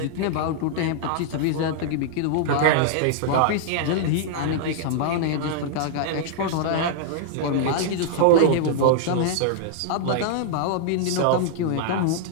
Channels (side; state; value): both; different; correlation -0.01